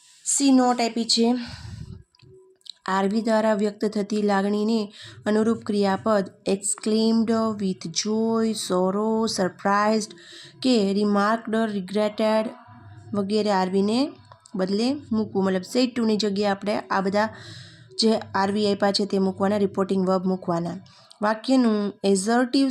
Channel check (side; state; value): both; identical; correlation 1.00